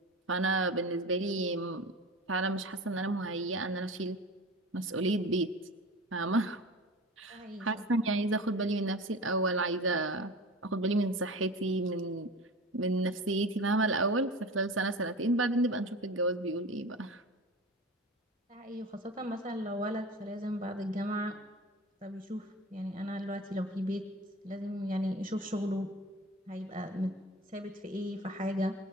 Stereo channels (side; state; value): both; normal; correlation 0.33